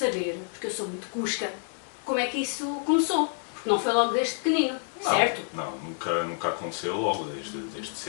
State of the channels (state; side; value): silent; right; 59 dB below the other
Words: porque eu sou muito cusca, como é que isso começou? Porque não foi logo desde pequenino, Não, certo? Não, nunca aconteceu logo desde